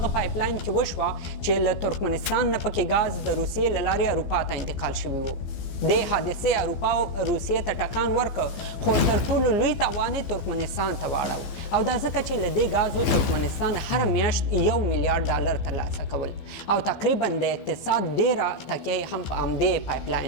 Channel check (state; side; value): late; right; 15 ms